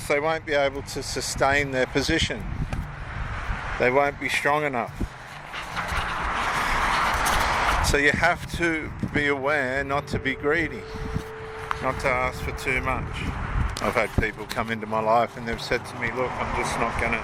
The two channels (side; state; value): both; identical; correlation 1.00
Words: they won't be able to sustain their position. They won't be strong enough. So you have to be aware not to be greedy, not to ask for too much. I've had people come into my life and they've said to me, look,